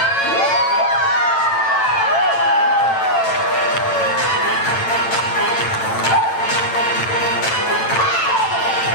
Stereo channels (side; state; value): right; late; 8.9 ms